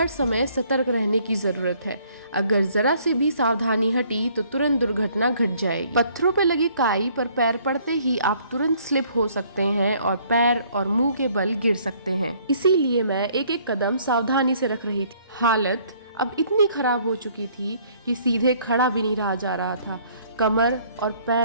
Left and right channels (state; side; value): inverted; both; correlation -0.61